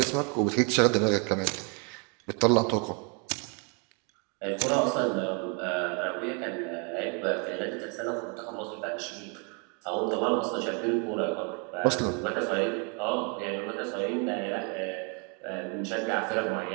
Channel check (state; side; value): quieter; left; 35.9 dB